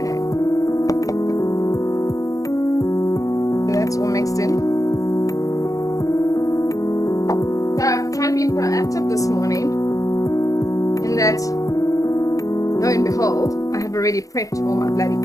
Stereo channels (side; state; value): right; late; 0.16 ms